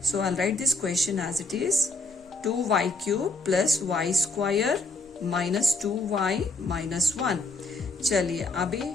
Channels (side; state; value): right; quieter; 3.1 dB